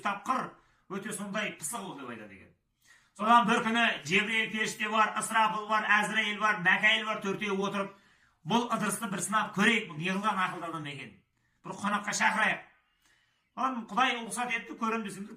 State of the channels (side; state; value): both; identical; correlation 1.00